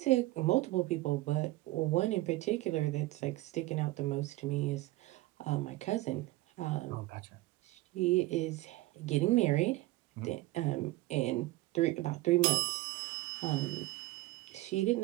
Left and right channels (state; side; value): quieter; left; 18.6 dB